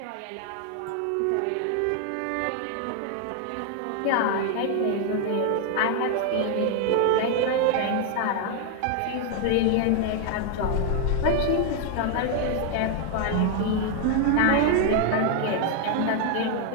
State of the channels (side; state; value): both; different; correlation 0.00